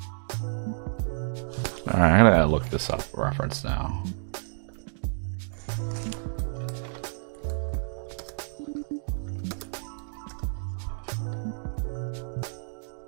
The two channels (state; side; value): silent; left; digital silence